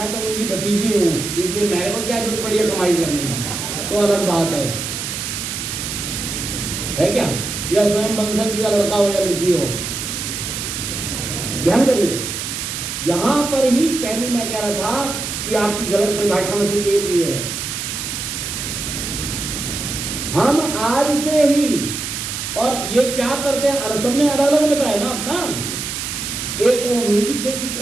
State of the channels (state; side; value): noise; right; hiss, 5 dB below the sound